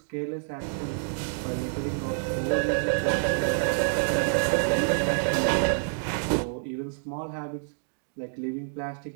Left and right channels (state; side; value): silent; left; digital silence